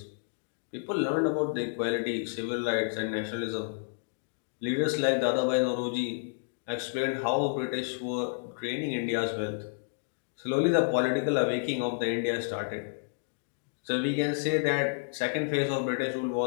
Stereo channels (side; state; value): right; silent; digital silence